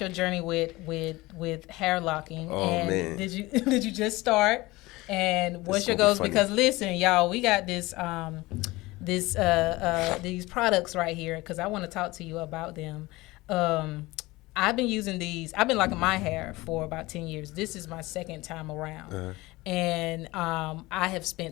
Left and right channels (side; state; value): right; quieter; 20.7 dB